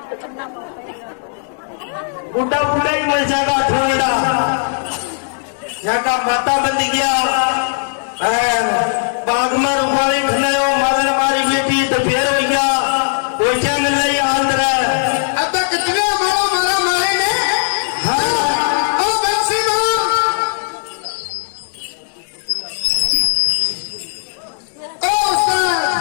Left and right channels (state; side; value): silent; right; digital silence